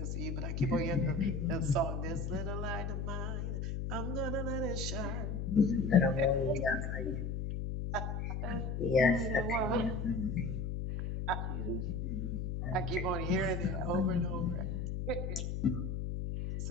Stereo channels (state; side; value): noise; left; hum, 2 dB below the sound